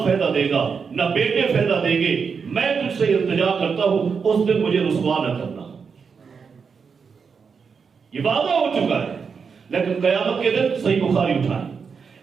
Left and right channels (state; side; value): quieter; left; 5.8 dB